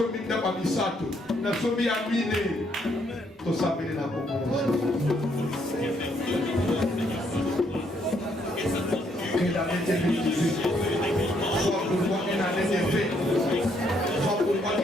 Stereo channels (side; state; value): both; normal; correlation 0.71